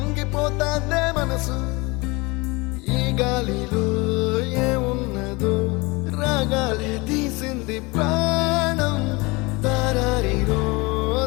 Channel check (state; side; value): quieter; right; 25.6 dB